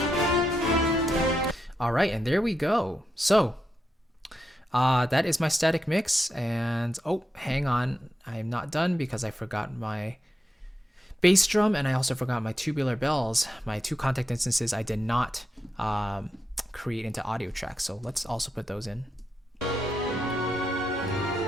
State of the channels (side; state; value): both; normal; correlation 0.86